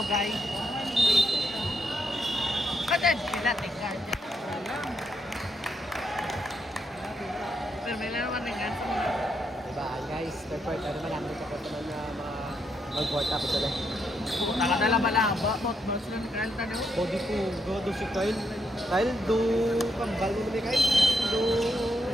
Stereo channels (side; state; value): both; normal; correlation 0.78